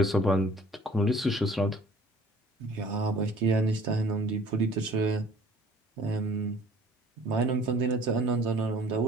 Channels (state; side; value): normal; both; correlation 0.52